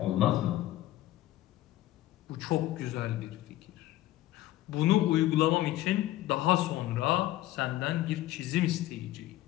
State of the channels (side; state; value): right; quieter; 15.3 dB